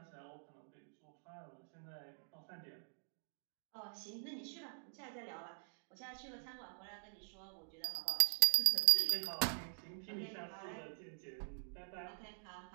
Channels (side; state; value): left; silent; digital silence